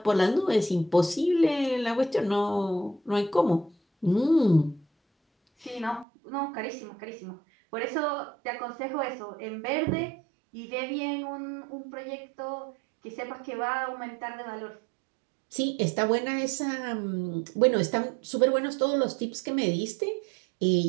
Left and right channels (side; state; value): left; drops out; at 6.1 s